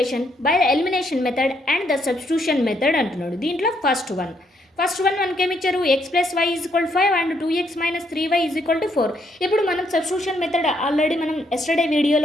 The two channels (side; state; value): both; normal; correlation 0.73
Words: by the elimination method and the substitution method అంటున్నాడు. దీంట్లో ఫస్ట్ వన్ మనకి ఏమి ఇచ్చారు? X plus Y is equal 5 and 2x minus 3y is equal to 4. ఇప్పుడు మనం సబ్స్టిట్యూషన్ మెథడ్ ఆల్రెడీ మనం ఎస్టర్డే